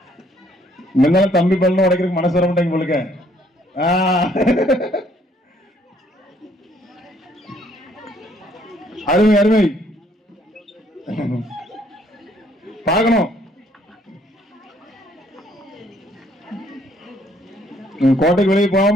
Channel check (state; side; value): normal; both; correlation 0.65